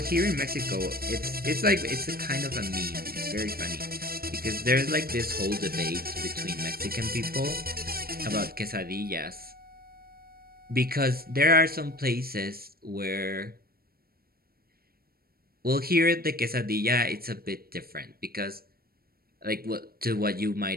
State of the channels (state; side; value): late; left; 0.44 ms